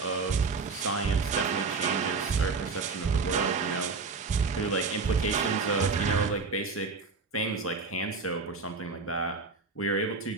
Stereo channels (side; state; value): left; quieter; 4.3 dB